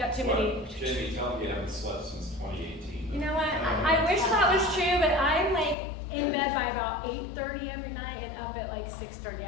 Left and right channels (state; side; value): drops out; right; at 5.8 s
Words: too many. Jaimie, tell me you haven't slept since 2018. You know what? I wish that was true, but I'm like in bed by about 8:30 every night and up at like